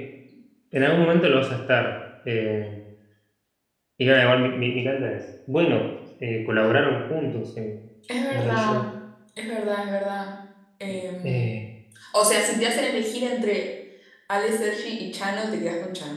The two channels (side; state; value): both; identical; correlation 1.00